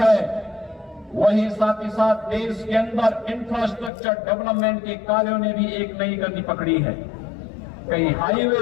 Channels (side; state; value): right; drops out; at 3.9 s